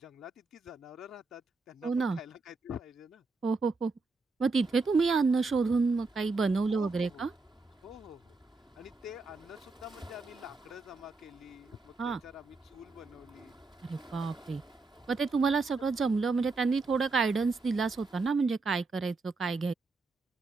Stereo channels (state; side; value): quieter; left; 3.9 dB